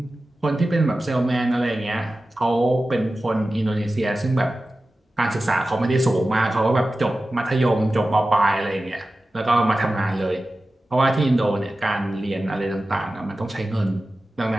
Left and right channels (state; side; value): normal; both; correlation 0.94